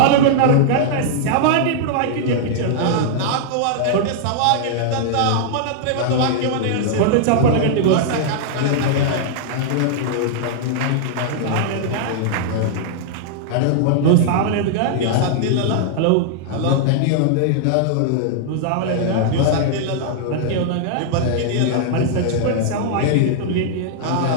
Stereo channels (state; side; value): different; both; correlation -0.01